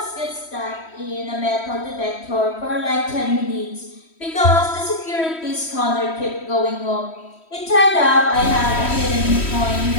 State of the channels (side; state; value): right; late; 3.1 ms